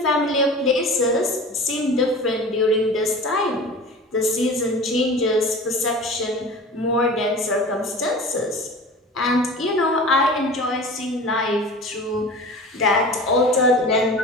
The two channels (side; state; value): both; normal; correlation 0.37